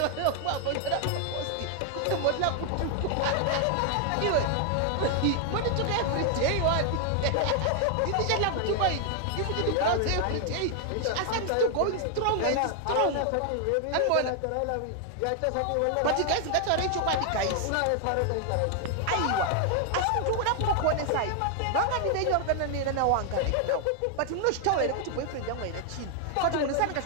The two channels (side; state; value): both; different; correlation 0.00